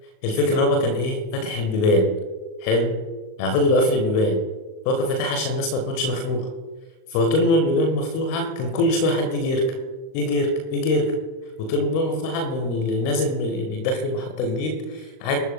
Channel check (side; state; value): right; late; 38 ms